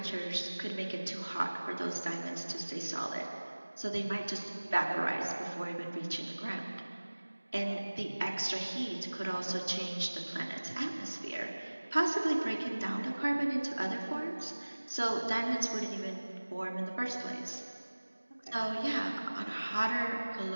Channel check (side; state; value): both; inverted; correlation -1.00